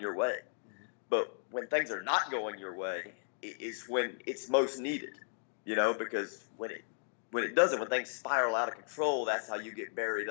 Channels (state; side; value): silent; right; digital silence